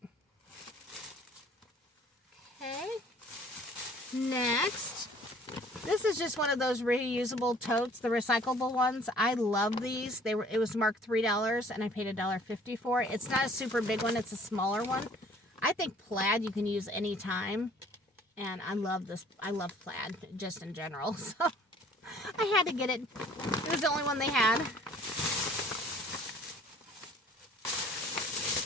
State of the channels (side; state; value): both; normal; correlation 0.54